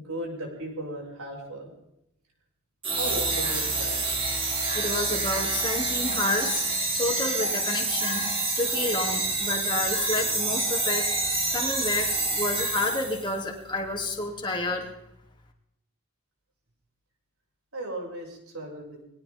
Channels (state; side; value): normal; both; correlation 0.09